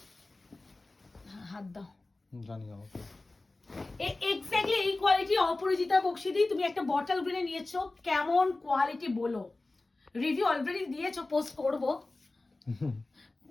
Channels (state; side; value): quieter; right; 3.1 dB